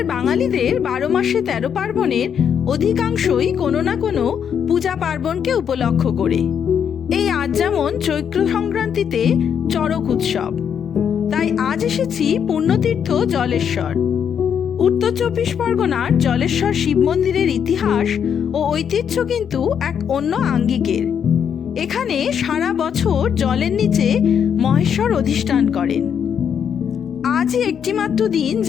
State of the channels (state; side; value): quieter; right; 7.9 dB